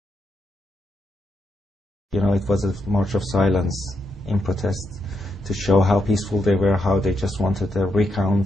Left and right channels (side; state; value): both; normal; correlation 0.81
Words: You know, it was a march of silence in protest to show how peaceful they were, how they just wanted a